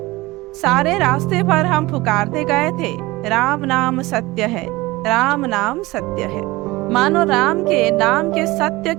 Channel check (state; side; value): quieter; left; 20.5 dB